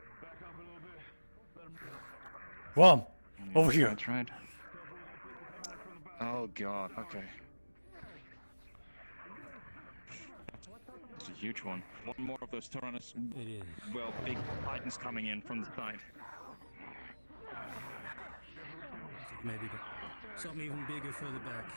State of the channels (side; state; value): both; inverted; correlation -1.00